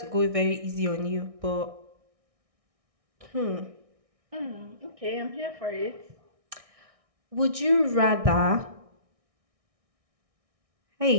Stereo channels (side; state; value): left; late; 1.6 ms